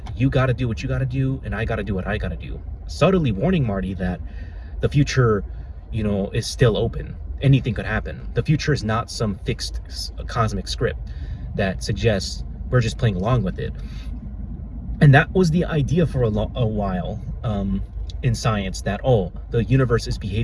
you gotta do what you gotta do, and I gotta do what I gotta do. Subtly warning Marty that the future, you know, is still open. Anything could happen. The future is not some fixed cosmic script that suggests we're just playing along with it. And that was the idea for a while in science, that, oh, the universe is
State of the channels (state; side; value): identical; both; correlation 1.00